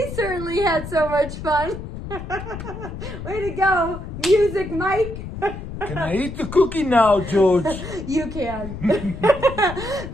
certainly had so much fun. Way to go, Music Mike. Can I eat the cookie now, George? You can. Bye,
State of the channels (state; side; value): noise; left; rumble, 9 dB below the sound